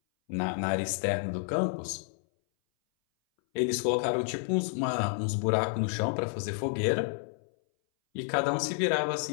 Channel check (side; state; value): right; silent; 58 dB below the other